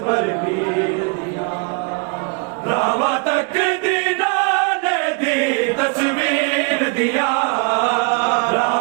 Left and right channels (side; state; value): left; quieter; 33.6 dB